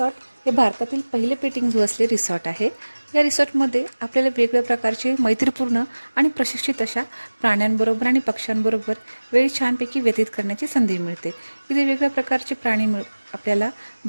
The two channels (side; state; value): both; inverted; correlation -1.00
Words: हे भारतातील पहिले पेटिंग झू असले रिसॉर्ट आहे. या रिसॉर्टमध्ये आपल्याला वेगवेगळ्या प्रकारचे मैत्रीपूर्ण आणि प्रशिक्षित अशा प्राण्यांबरोबर आणि पक्ष्यांबरोबर वेळ छानपैकी व्यतीत करण्याची संधी मिळते. इथे वेगवेगळ्या प्रकारचे प्राणी आपल्याला